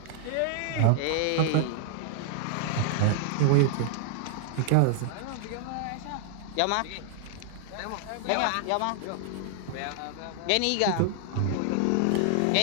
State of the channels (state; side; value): different; both; correlation 0.00